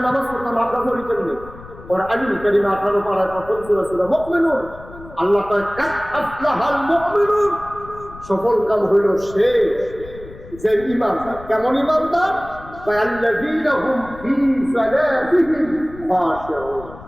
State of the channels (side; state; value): left; noise; rumble, 17 dB below the sound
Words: নামাজ পড়লাম, আমরা পড়ি কেমনে? ওর আলিম কারিমা 18 পারায় প্রথম সূরা সূরা মুমিনুন, আল্লাহ কয় কাদ আফলাহাল মুমিনুন, সফল কাম হইল সে যে ঈমানদার। কেমন ঈমানদার? আল্লাযীনা হুম ফী সালাতিহিম খাশিউন,